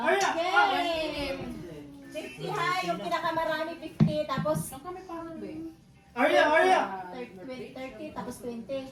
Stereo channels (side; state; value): both; identical; correlation 1.00